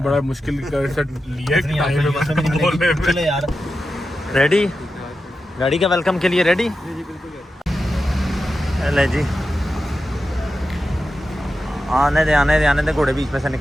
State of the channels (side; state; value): both; normal; correlation 0.91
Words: बड़ा मुश्किल कर से लिया इतनी टाइम आपको में इज्जत भी नहीं बोलने मिलेगी। में। चलो यार, रेडी गाड़ी का वेलकम के लिए रेडी? ले जी, आने दे घोड़े बीच में से